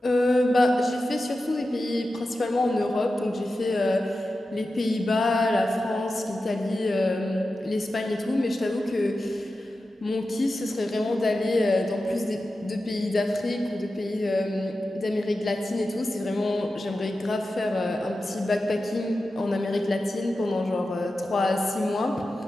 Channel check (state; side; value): normal; both; correlation 0.92